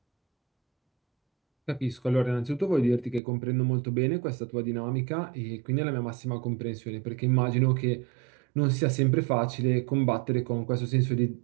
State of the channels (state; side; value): drops out; left; at 3.2 s